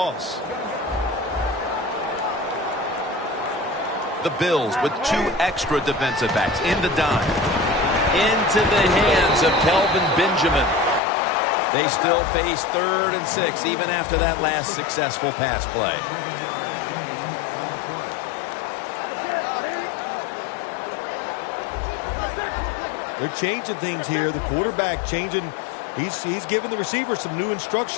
The Bills with 2 extra defensive backs in the dime. Into the hands of Kelvin Benjamin. They still face 3rd and 6 even after that last successful pass play. They're changing things here. The quarterback changing. He's giving the receiver some new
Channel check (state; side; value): drops out; right; at 11.0 s